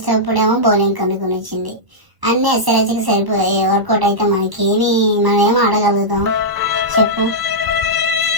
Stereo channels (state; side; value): late; left; 1.0 ms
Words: బౌలింగ్ కనుగొనిచ్చింది. అన్ని ఎస్ఆర్హెచ్కి సరిపోయి వర్కౌట్ అయితే మనం ఏం ఆడగలుగుతాం చెప్పు?